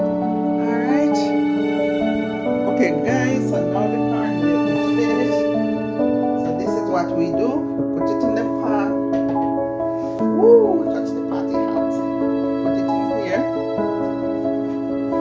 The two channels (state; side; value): identical; both; correlation 1.00